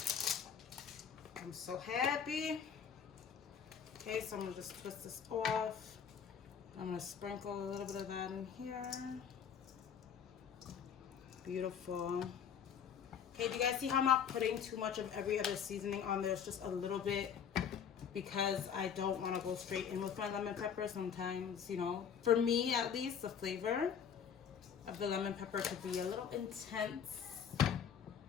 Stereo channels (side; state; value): right; quieter; 7.6 dB